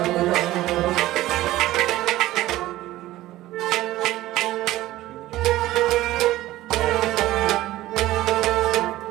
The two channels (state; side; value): quieter; left; 16.0 dB